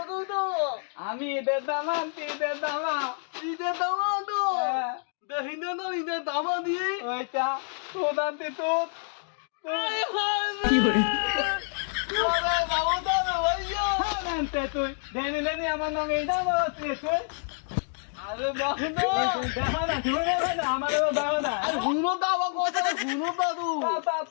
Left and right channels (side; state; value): right; silent; 55 dB below the other